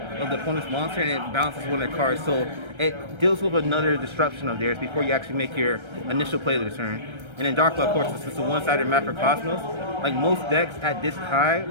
of the opponent's monster and it bounces one of their cards. So it deals with another disruption of theirs before you actually make your initial play of the turn. And then Dark Law, of course, this is a one-sided map for Cosmos. Like most decks at this high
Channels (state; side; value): late; left; 1.3 ms